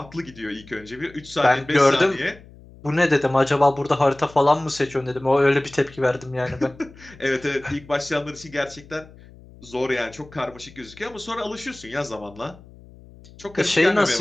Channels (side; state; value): left; noise; hum, 22 dB below the sound